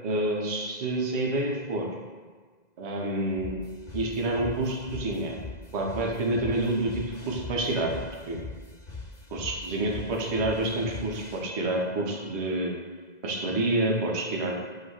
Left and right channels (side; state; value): right; late; 2.0 ms